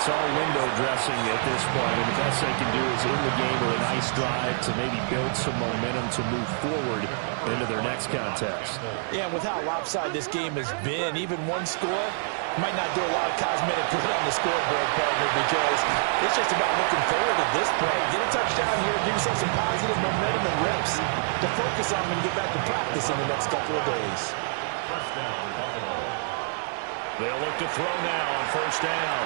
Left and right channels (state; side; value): silent; left; 61 dB below the other